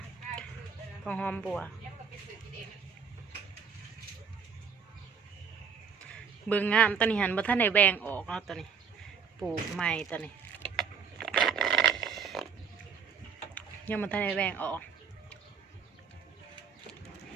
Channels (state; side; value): quieter; left; 6.3 dB